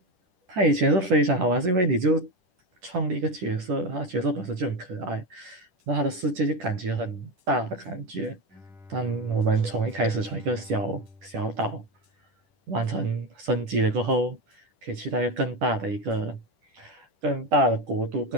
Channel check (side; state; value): left; late; 10 ms